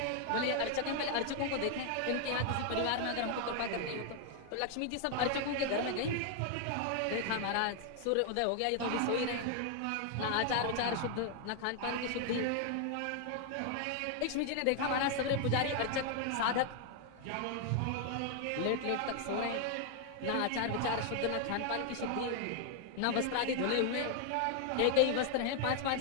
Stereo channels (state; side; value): different; both; correlation 0.00